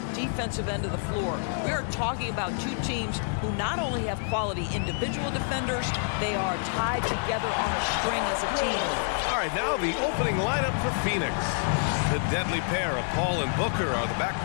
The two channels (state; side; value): silent; right; 60 dB below the other